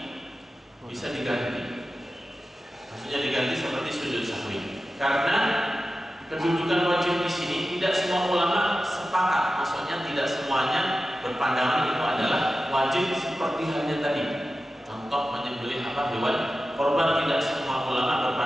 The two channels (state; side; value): normal; both; correlation 0.93